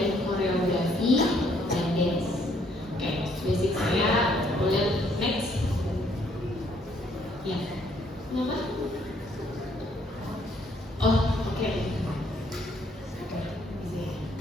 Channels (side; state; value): both; normal; correlation 0.67